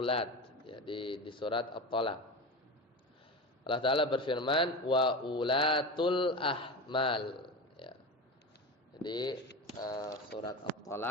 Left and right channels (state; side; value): normal; both; correlation 0.25